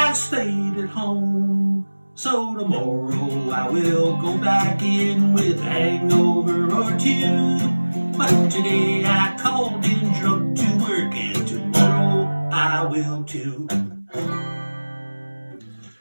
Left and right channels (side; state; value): both; inverted; correlation -1.00